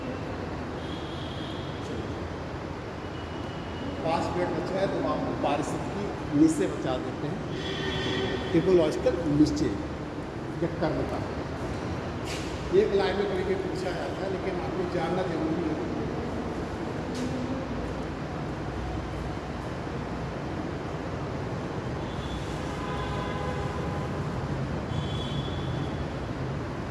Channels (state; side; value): identical; both; correlation 1.00